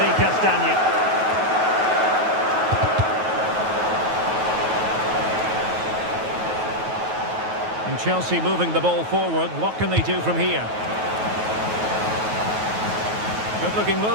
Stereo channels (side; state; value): left; late; 9.3 ms